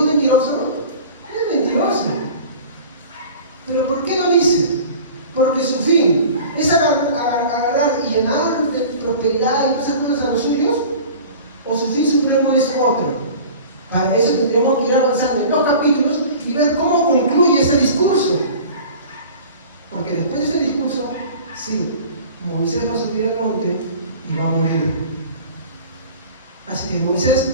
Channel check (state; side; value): inverted; both; correlation -0.41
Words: mentiroso? Es mentiroso. ¿Pero por qué lo dice? Porque su fin es agarrar y llenar de prosperidad y esas cosas a los suyos, o su fin supremo es otro. Para eso tendríamos que ir avanzando en los capítulos y ver cómo concluye ese discurso. Porque después de ese discurso, sí, Moisés va a subir al monte y va a morir. Así que Moisés